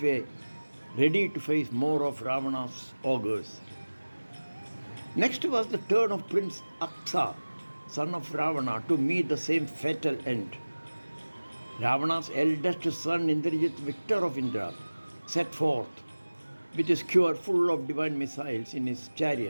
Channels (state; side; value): inverted; both; correlation -1.00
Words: ready to face more of Ravana's ogres. Next was the turn of Prince Aksa, son of Ravana, to meet the same fatal end. Ravana's eldest son, Indrajit, victor of Indra, set forth with his skewer full of divine missiles in his